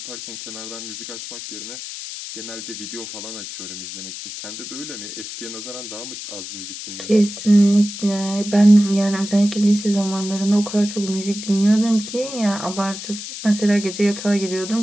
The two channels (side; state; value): left; noise; hiss, 9 dB below the sound